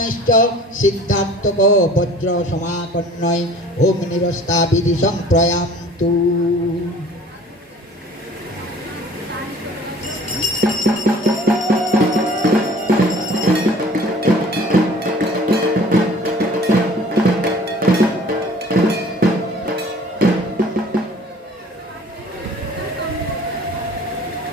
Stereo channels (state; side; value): normal; both; correlation 0.49